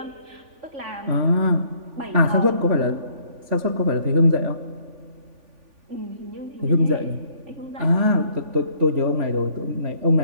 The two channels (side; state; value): left; late; 3.5 ms